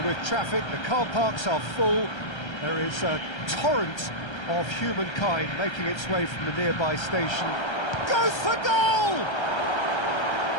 with traffic. The car parks are full. There is a torrent of humankind making its way from the nearby station. Goes for goal!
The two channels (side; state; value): right; late; 1.3 ms